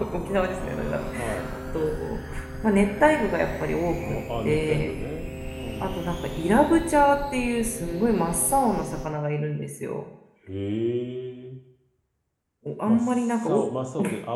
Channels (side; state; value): both; identical; correlation 1.00